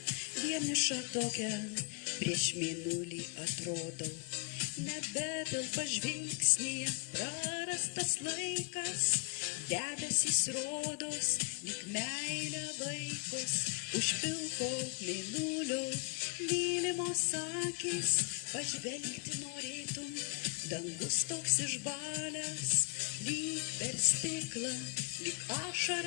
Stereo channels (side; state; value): right; quieter; 34.3 dB